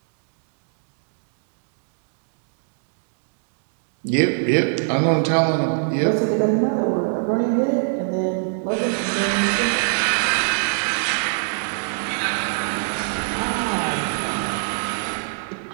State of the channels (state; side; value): silent; left; digital silence